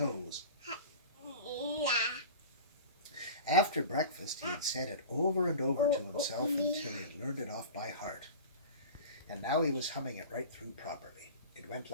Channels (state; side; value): inverted; both; correlation -0.35